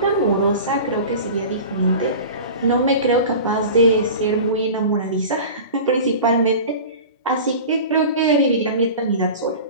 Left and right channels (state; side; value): inverted; both; correlation -0.35